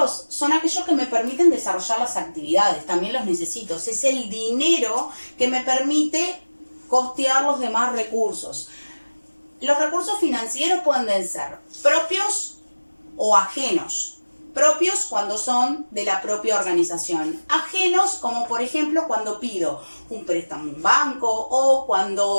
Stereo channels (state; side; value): inverted; both; correlation -1.00